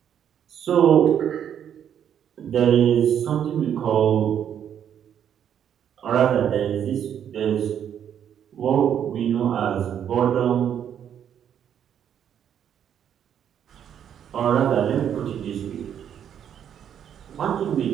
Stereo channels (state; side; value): quieter; left; 9.1 dB